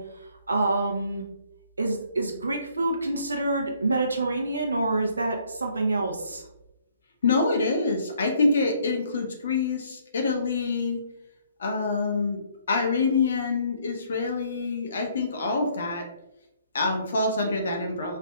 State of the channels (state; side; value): inverted; both; correlation -0.65